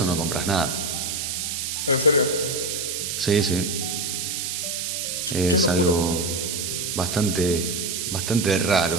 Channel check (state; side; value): noise; right; hiss, 3 dB below the sound